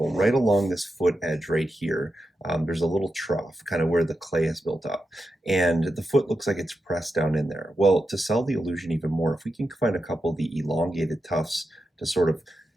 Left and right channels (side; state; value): both; normal; correlation 0.88